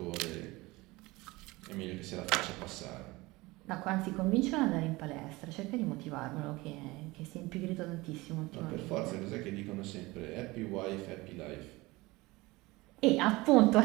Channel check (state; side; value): quieter; left; 21.6 dB